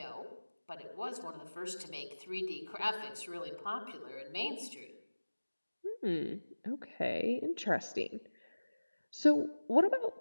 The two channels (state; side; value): inverted; both; correlation -1.00